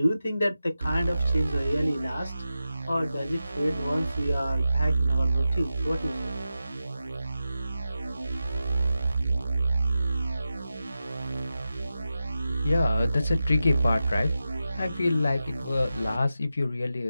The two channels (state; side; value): inverted; both; correlation -0.92